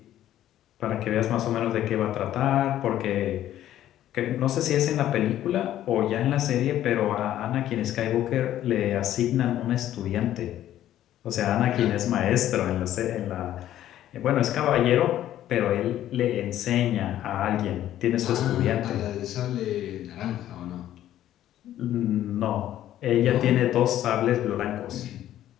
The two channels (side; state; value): right; quieter; 12.4 dB